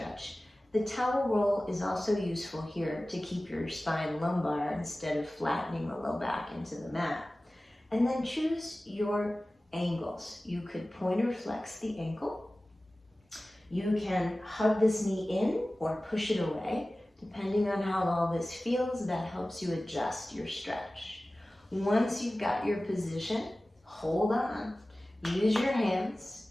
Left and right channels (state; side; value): normal; both; correlation 0.97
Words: The towel roll is also useful here to keep your spine lumbar instead of flattening the low back into the mat. And then choose your angles. You could pointer flex the ankle. You can hug this knee in or push it away. Depending on how all this feels, that helps you adjust your stretch. Once you've got your position, hold on. Use your hands,